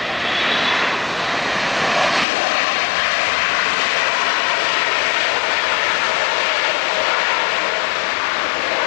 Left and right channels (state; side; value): drops out; right; at 2.2 s